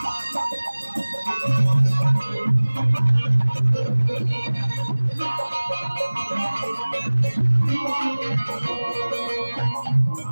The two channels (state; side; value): inverted; both; correlation -1.00